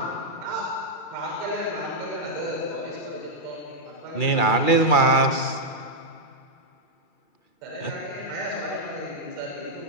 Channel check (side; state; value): right; late; 2.3 ms